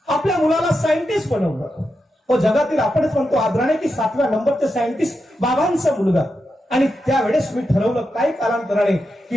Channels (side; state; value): both; normal; correlation 0.87